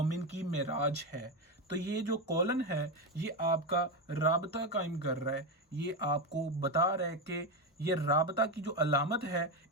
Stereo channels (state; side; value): normal; both; correlation 0.12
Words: की मेराज है। तो ये जो कॉलन है, ये आपका राबता कायम कर रहा है, ये आपको बता रहा है कि ये राबता की जो अलामत है,